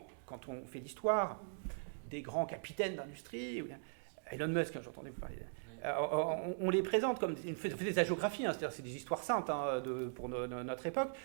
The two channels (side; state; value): left; silent; digital silence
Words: quand on fait l'histoire des grands capitaines d'industrie, Elon Musk, j'entendais vous parler, on les présente comme on fait des hagiographies, c'est-à-dire c'est des histoires saintes pour notre époque.